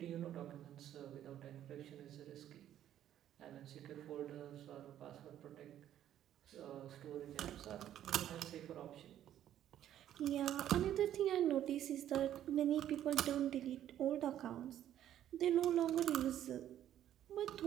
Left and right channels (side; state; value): left; quieter; 11.4 dB